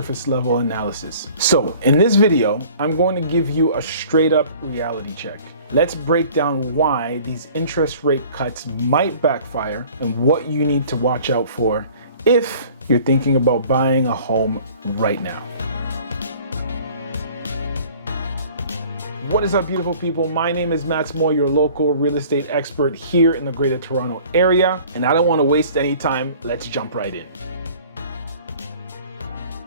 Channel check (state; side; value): inverted; both; correlation -0.49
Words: level analysis. So in this video, I'm going to give you a straight up reality check. Let's break down why these interest rate cuts might backfire and what you need to watch out for if you're thinking about buying a home right now. What is up, beautiful people? My name is Matt Moore, your local real estate expert here in the Greater Toronto area, and I don't want to waste any time. Let's jump right in.